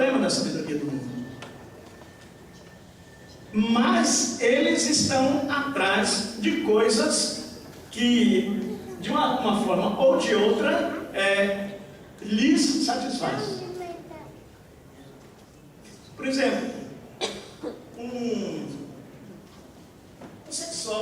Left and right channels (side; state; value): both; identical; correlation 1.00